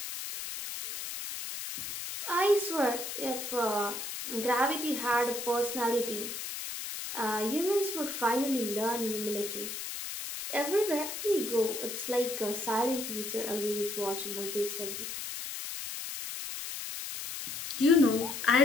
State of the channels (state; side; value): noise; left; hiss, 6 dB below the sound